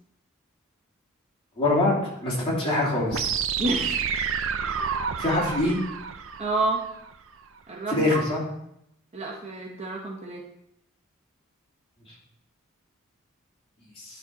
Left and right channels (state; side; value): normal; both; correlation 0.33